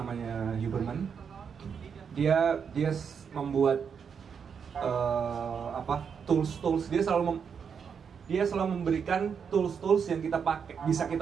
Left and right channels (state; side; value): quieter; left; 6.8 dB